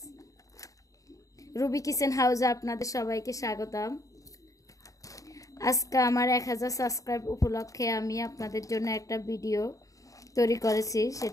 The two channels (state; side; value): late; right; 0.16 ms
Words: Ruby kitchen হাউসে আপনাদের সবাইকে স্বাগতম। আজকে আমার 1000 সাবস্ক্রাইব উপলক্ষে আমি আপনাদের জন্য একটা ভিডিও তৈরি করেছি।